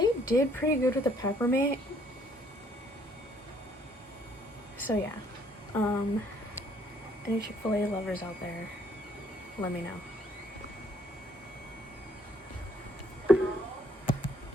did pretty good with the peppermint. So yeah, any Chick-fil-A lovers out there, let me know.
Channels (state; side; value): normal; both; correlation 0.65